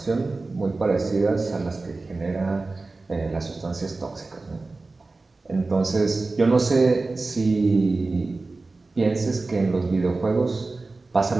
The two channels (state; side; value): quieter; left; 3.5 dB